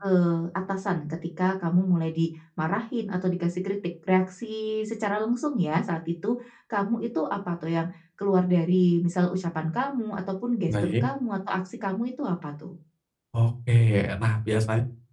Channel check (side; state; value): both; identical; correlation 1.00